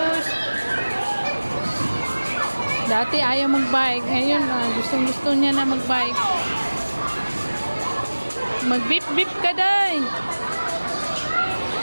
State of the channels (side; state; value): both; inverted; correlation -1.00